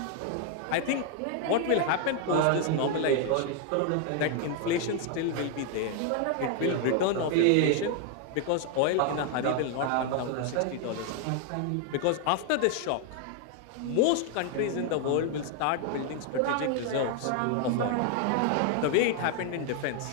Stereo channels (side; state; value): both; different; correlation 0.00